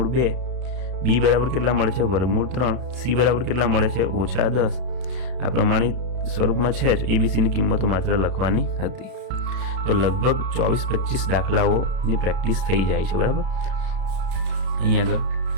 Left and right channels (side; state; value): left; late; 32 ms